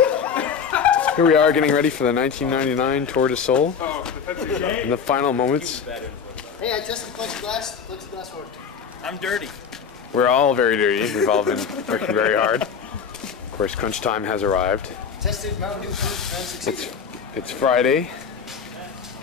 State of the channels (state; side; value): quieter; right; 6.6 dB